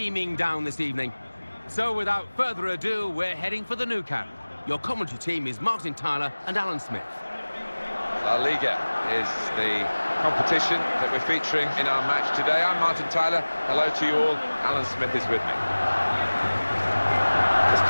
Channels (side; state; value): both; inverted; correlation -1.00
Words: down this evening. So without further ado, we're heading for the Nou Camp. Your commentary team is Martin Tyler and Alan Smith. La Liga is the competition that we're featuring in our match today. I'm Martin Tyler. Hello to you all. Alan Smith is with me. It's